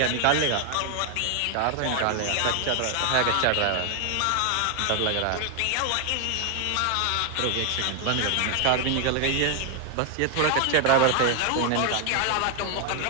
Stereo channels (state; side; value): different; both; correlation 0.00